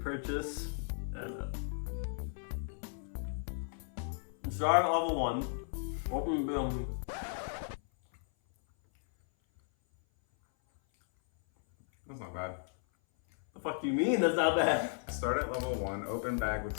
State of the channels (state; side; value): silent; right; 54 dB below the other